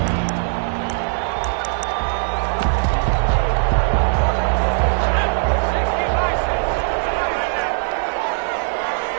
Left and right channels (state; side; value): silent; left; digital silence